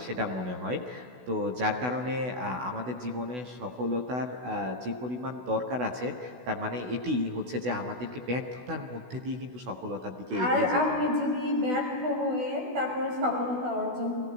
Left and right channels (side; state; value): left; late; 16 ms